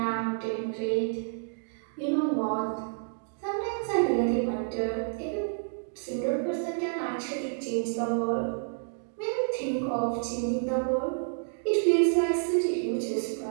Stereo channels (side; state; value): left; silent; digital silence